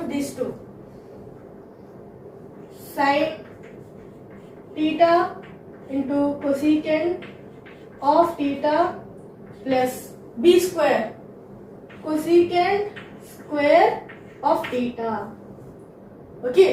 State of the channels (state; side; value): identical; both; correlation 1.00